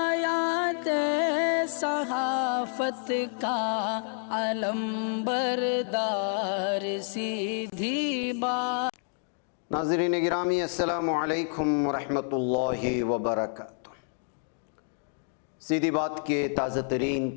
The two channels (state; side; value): silent; right; 57 dB below the other